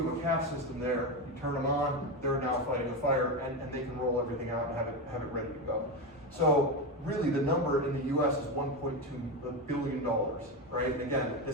have a CAF system there, you turn them on, they're now fighting a fire, and they can roll everything out and have it ready to go. So really the number in the US is $1.2 billion, right? And again,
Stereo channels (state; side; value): normal; both; correlation 0.15